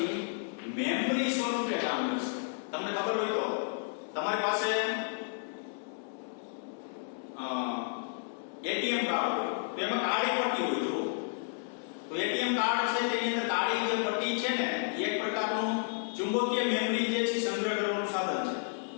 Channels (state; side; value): silent; right; digital silence